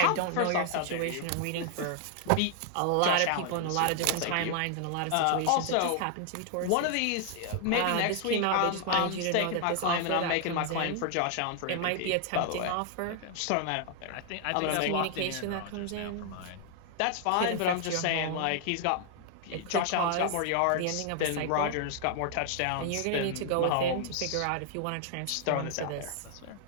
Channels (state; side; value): different; both; correlation 0.00